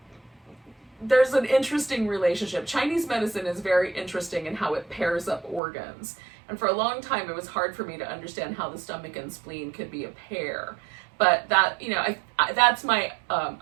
there's an interesting relationship. Chinese medicine is very interesting in how it pairs up organs. And for a long time, it was hard for me to understand how the stomach and spleen could be a pair. But that, that's my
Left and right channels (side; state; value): left; drops out; at 5.6 s